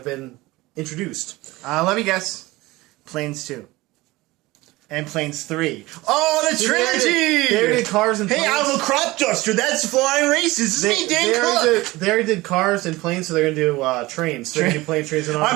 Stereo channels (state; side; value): quieter; left; 20.1 dB